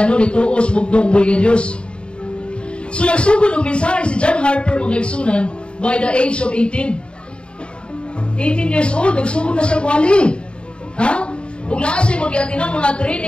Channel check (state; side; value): late; right; 0.054 ms